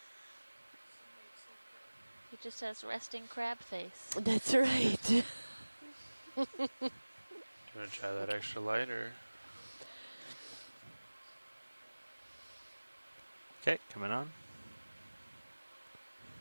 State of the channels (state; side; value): inverted; both; correlation -1.00